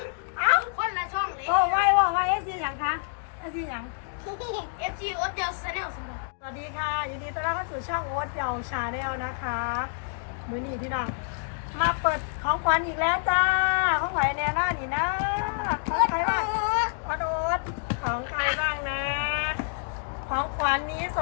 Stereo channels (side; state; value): right; silent; digital silence